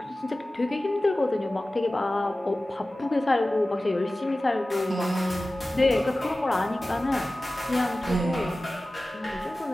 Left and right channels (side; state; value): both; normal; correlation 0.96